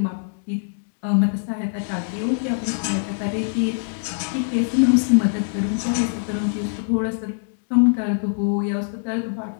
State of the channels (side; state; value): right; silent; digital silence